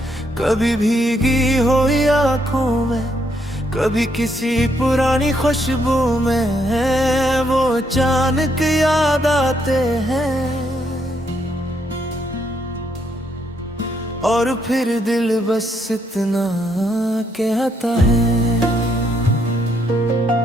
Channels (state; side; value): normal; both; correlation 0.74